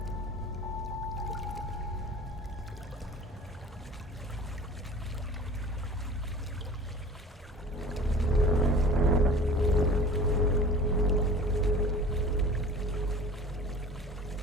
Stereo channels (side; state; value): both; normal; correlation 0.43